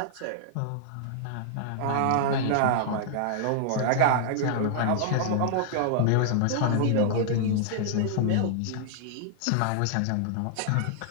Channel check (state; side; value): different; both; correlation -0.01